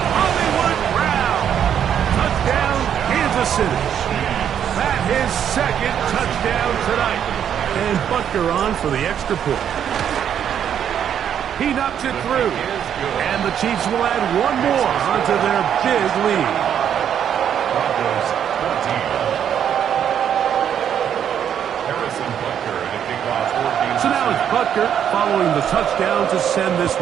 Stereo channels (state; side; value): quieter; left; 9.1 dB